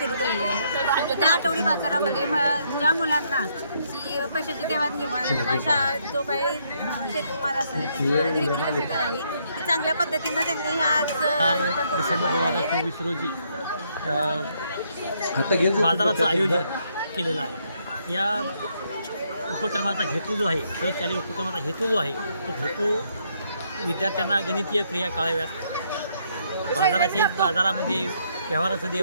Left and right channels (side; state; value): both; inverted; correlation -0.72